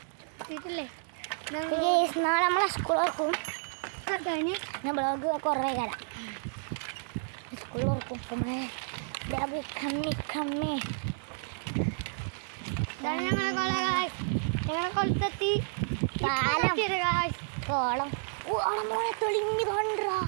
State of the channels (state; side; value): silent; left; 57 dB below the other